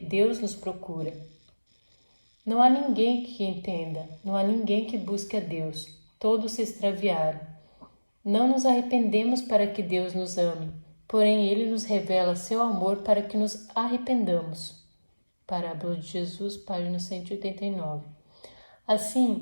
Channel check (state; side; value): inverted; both; correlation -1.00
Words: nos procura. Não há ninguém que entenda, não há ninguém que busque a Deus. Todos se extraviaram. Não nos arrependemos para que Deus nos ame, porém Ele nos revela seu amor para que nos arrependamos. Parábola de Jesus, página 189.